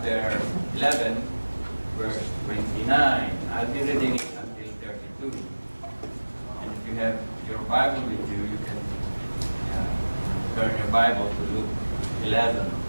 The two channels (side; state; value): both; inverted; correlation -1.00